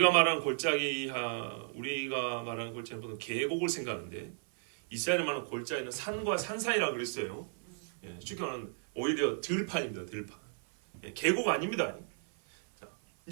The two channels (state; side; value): silent; left; 55 dB below the other